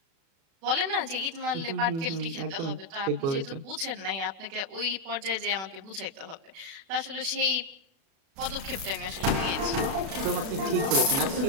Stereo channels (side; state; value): left; late; 36 ms